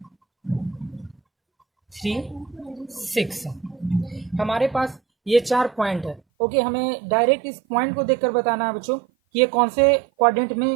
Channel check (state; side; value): drops out; left; at 6.2 s